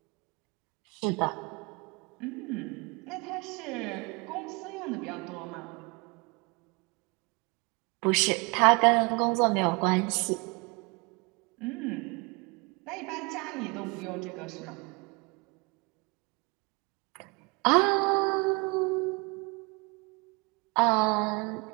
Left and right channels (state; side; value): quieter; left; 28.4 dB